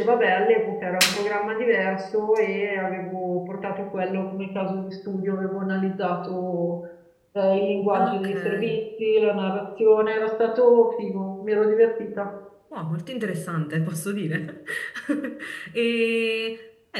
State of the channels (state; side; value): identical; both; correlation 1.00